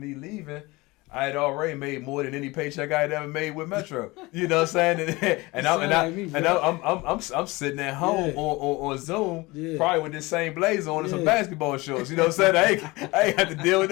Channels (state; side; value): quieter; right; 22.5 dB